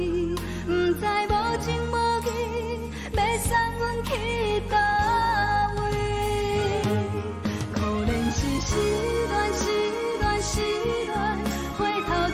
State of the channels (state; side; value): identical; both; correlation 1.00